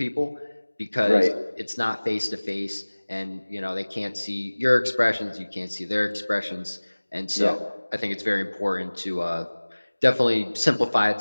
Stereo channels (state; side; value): inverted; both; correlation -1.00